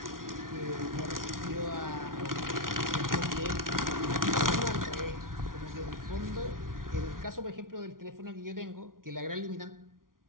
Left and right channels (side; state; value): left; late; 0.91 ms